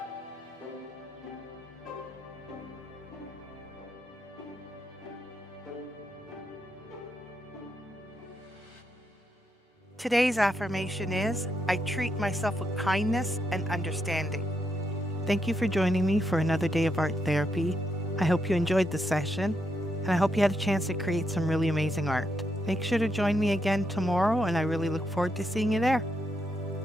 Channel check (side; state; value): both; normal; correlation 0.80